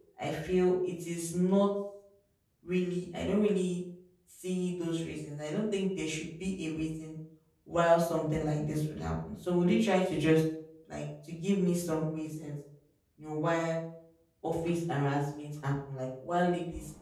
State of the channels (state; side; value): identical; both; correlation 1.00